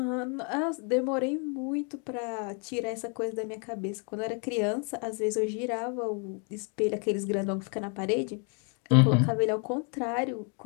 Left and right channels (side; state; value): right; quieter; 38.3 dB